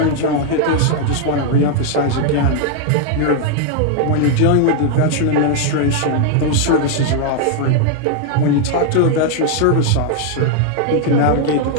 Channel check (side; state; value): both; different; correlation 0.00